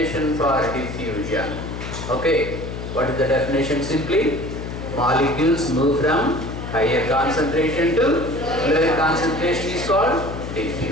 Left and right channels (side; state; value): left; noise; hum, 7 dB below the sound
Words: for diffusion. Okay, what is the definition simply? Molecules move from higher concentration to lower concentration is called